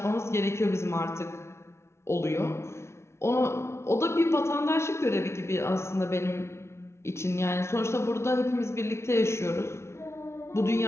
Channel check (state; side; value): late; right; 0.13 ms